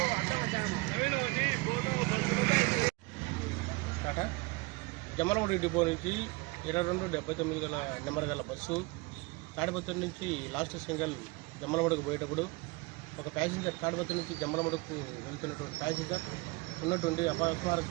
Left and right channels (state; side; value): quieter; left; 25.4 dB